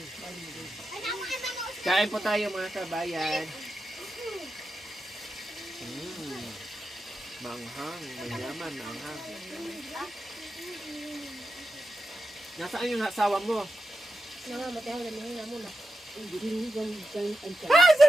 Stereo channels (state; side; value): normal; both; correlation 0.89